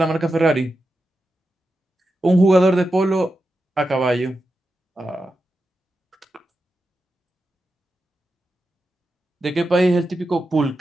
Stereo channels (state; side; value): normal; both; correlation 0.89